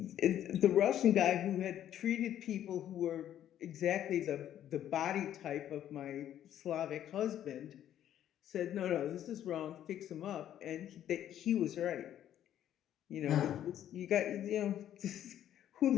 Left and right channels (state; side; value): quieter; right; 11.1 dB